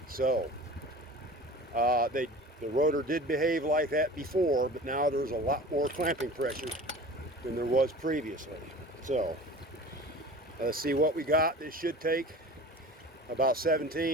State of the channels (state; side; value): normal; both; correlation 0.39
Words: So the rotor did behave like that before, but now there's a lot more clamping pressure than there was previously. So let's see what we got. This should take about